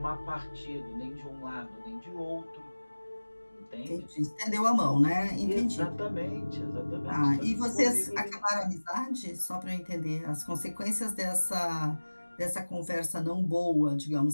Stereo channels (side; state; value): both; inverted; correlation -1.00